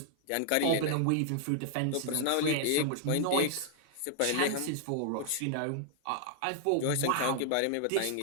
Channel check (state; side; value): different; both; correlation -0.01